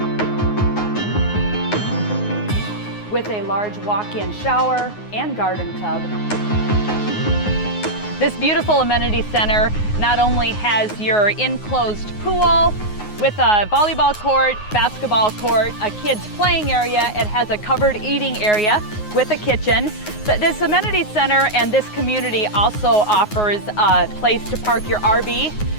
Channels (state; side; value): late; right; 9.5 ms